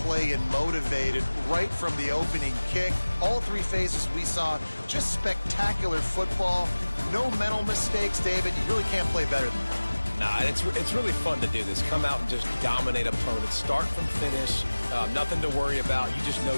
play and motivated right from the opening kick. All 3 phases we saw, just spectacular football. No mental mistakes, David. You really can't play better than that. Nah, it's really fun to do this. Come out and just dominate opponents. Start from finish. Nothing to worry about. You just know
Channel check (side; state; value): both; inverted; correlation -1.00